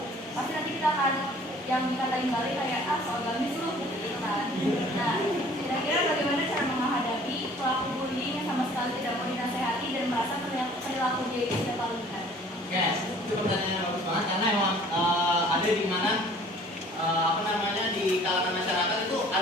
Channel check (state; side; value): normal; both; correlation 0.52